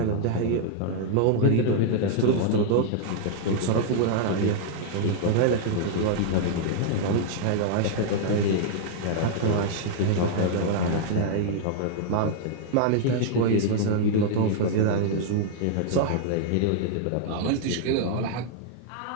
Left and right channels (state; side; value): different; both; correlation -0.01